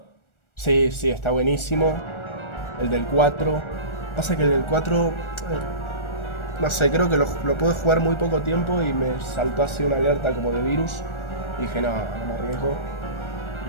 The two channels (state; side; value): late; right; 1.4 ms